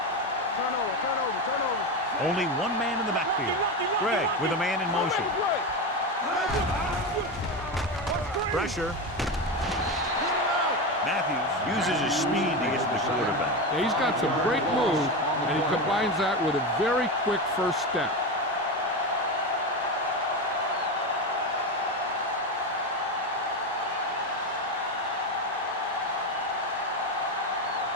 Turn over. Only one man in the backfield. Greg with a man in motion. Pressure. Matthews uses his speed to get to the quarterback. Yeah, he's got some great moves, and he combines that with a very quick first step.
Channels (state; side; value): normal; both; correlation 0.17